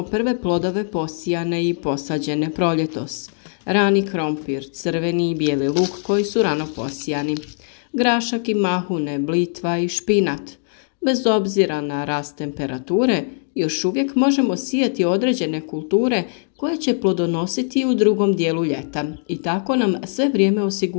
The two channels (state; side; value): silent; right; 65 dB below the other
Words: prve plodove posijane i posađene proljetos. Rani krompir, crveni i bijeli luk koji su rano posijani, grašak i mahune, blitva i špinat. Bez obzira na rast temperature, još uvijek možemo sijati određene kulture koje će plodonositi u drugom dijelu ljeta i tako nam sve vrijeme